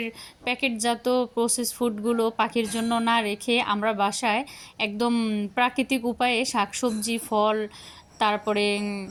প্যাকেটজাত প্রসেস ফুডগুলো পাখির জন্য না রেখে আমরা বাসায় একদম প্রাকৃতিক উপায়ে শাকসবজি, ফল, তারপরে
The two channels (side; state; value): both; identical; correlation 1.00